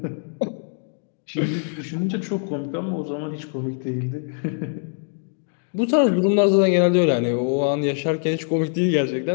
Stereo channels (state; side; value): silent; right; 63 dB below the other